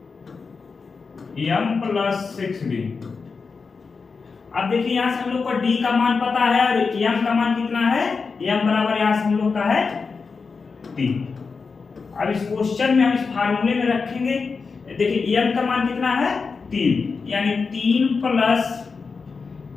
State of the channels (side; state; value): right; quieter; 4.8 dB